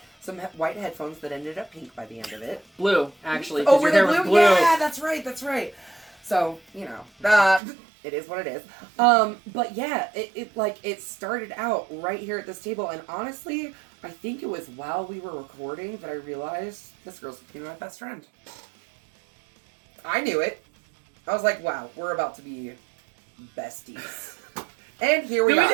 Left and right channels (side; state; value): left; drops out; at 7.6 s